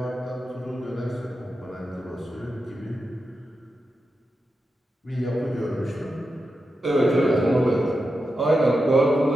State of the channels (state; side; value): normal; both; correlation 0.89